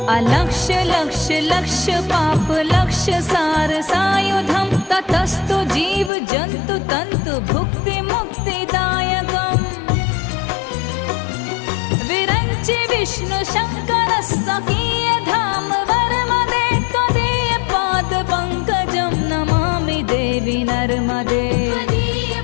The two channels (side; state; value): right; drops out; at 6.1 s